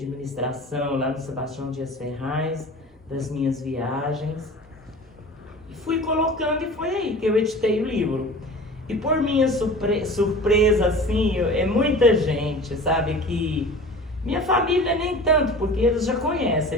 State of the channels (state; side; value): normal; both; correlation 0.39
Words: lá no Sebastião Dias Ferraz, das minhas viagens. E fui colocando e foi aí que eu editei o livro. E por minha surpresa, assim, é muita gente, sabe, que Minha família nem tanto, porque eles já conhecem